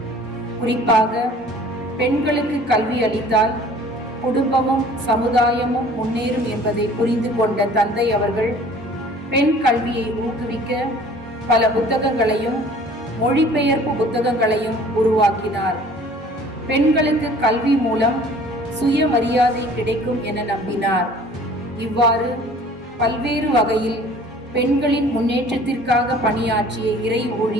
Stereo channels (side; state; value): both; normal; correlation 0.50